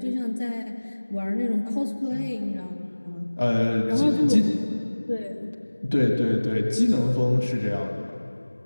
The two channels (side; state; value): both; inverted; correlation -1.00